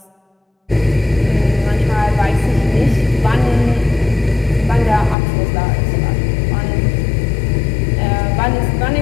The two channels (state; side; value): drops out; right; at 5.2 s